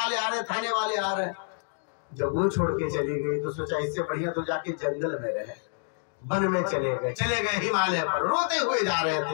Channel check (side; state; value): right; silent; 59 dB below the other